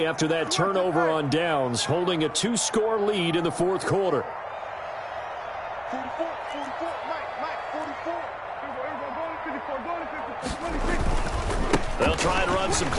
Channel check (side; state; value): both; identical; correlation 1.00